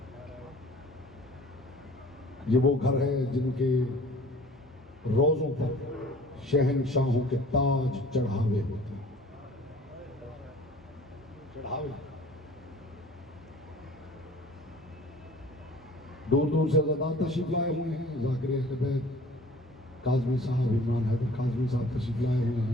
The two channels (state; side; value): normal; both; correlation 0.49